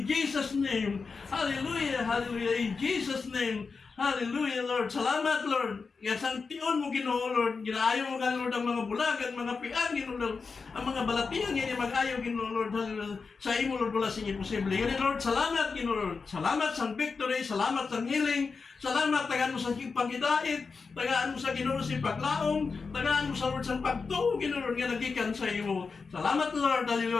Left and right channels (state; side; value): quieter; right; 4.8 dB